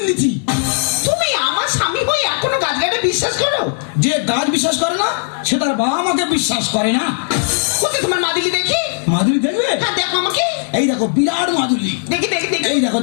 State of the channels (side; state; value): right; silent; 68 dB below the other